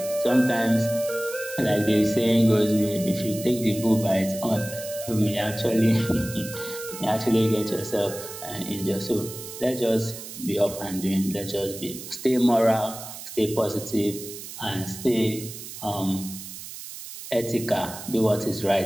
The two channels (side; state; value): right; noise; hiss, 12 dB below the sound